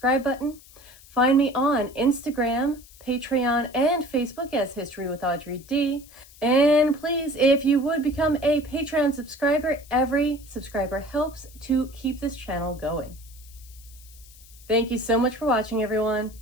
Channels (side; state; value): left; noise; hiss, 23 dB below the sound